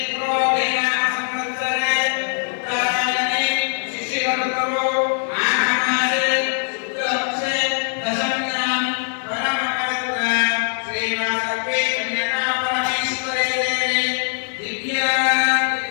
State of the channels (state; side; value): silent; right; 65 dB below the other